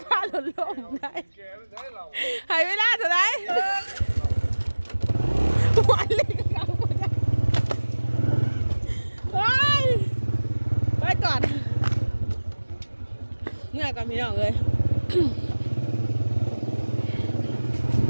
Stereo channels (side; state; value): both; inverted; correlation -1.00